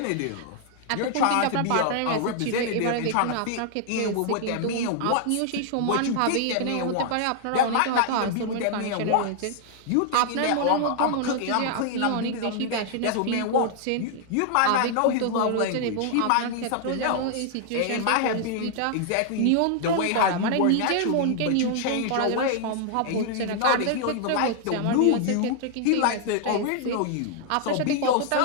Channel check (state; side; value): different; both; correlation 0.00